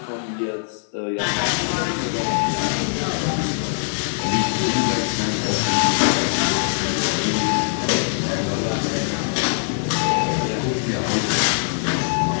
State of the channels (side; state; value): right; silent; digital silence